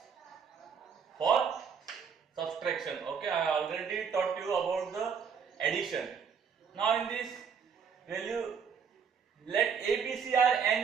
for subtraction. Okay, I already taught you about the addition. Now, in this value, let A, B, C are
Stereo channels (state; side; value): quieter; left; 6.6 dB